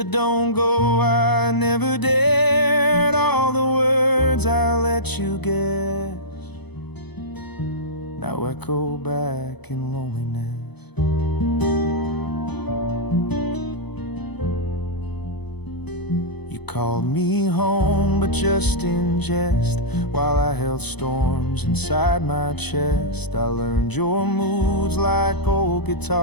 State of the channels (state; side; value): late; right; 0.99 ms